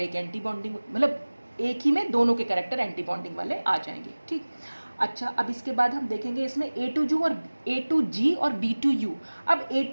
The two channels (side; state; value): both; inverted; correlation -1.00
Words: एंटी बॉन्डिंग, मतलब एक ही में दोनों के कैरेक्टर एंटी बॉन्डिंग वाले आ जाएंगे, ठीक। अच्छा, अब इसके बाद हम देखेंगे इसमें A2G और B2U। अब